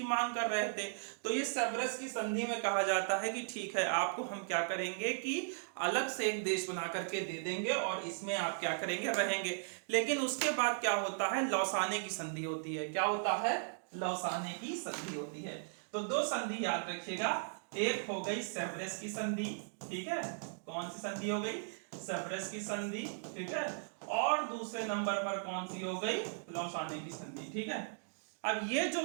मांग कर रहे थे। तो ये सेवरेस की संधि में कहा जाता है कि ठीक है, आपको हम क्या करेंगे कि अलग से एक देश बना करके दे देंगे और इसमें आप क्या करेंगे, रहेंगे। लेकिन उसके बाद क्या होता है, लौसाने की संधि होती है। क्या होता है, लौसाने की संधि होती है। तो 2 संधि याद रखिएगा, एक हो गई सेवरेस की संधि, ठीक है, कौन सी संधि हो गई, सेवरेस की संधि, ठीक है, और दूसरे नंबर पर कौन सी हो गई, लौसाने की संधि। ठीक है, अब ये जो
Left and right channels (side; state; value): left; silent; digital silence